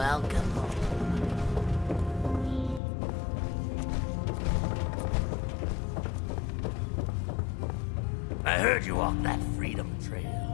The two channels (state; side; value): drops out; right; at 2.8 s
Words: home. I heard you walked that freedom trail.